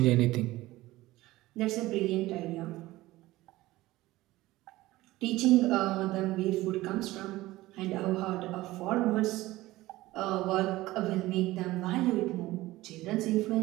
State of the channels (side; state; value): left; quieter; 17.8 dB